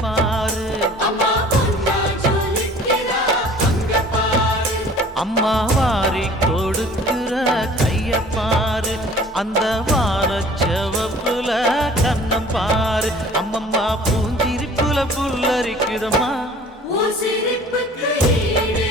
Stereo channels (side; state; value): both; normal; correlation 0.49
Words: பாரு, அம்மா வாரி கொடுக்கிற கைய பாரு, அந்த வானச்சவப்புல கண்ணம் பாரு, அம்மம்மா பூஞ்சிரிப்புல புல்லரிக்குதம்மா,